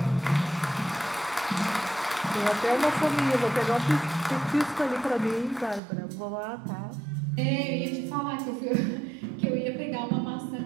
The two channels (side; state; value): left; drops out; at 5.8 s